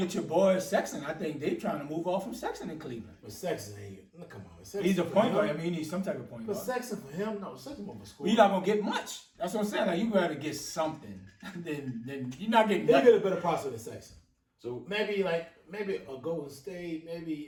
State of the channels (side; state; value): both; identical; correlation 1.00